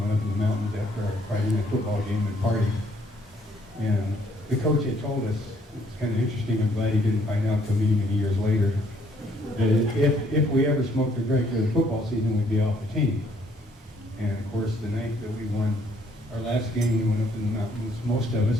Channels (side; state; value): both; normal; correlation 0.66